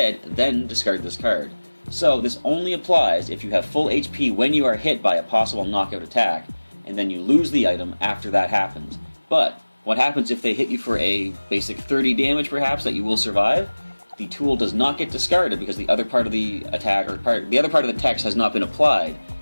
then discard this card. So this only applies if you have full HP when you are hit by a possible knockout attack, and then you lose the item after that happens. But what happens if they hit you for a basic 30 damage perhaps that you will survive? The tool does not get discarded because the other part of the attack or the other part of the text has not been applied,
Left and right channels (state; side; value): inverted; both; correlation -1.00